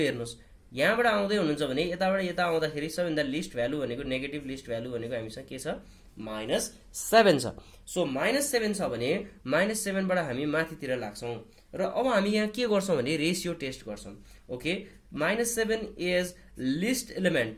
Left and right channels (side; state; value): both; identical; correlation 1.00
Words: हेर्नुहोस्। यहाँबाट आउँदै हुनुहुन्छ भने यताबाट यता आउँदाखेरि सबैभन्दा लिस्ट भ्यालु भनेको नेगेटिभ लिस्ट भ्यालु भनेको हामीसँग के छ? -7 छ। सो -7 छ भने -7बाट हामी माथितिर लाग्छौँ र अब हामी यहाँ के गर्छौँ भने रेसियो टेस्ट गर्छौँ। Okay, -7 is list element